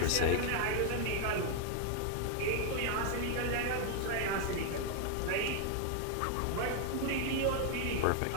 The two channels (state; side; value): different; both; correlation 0.00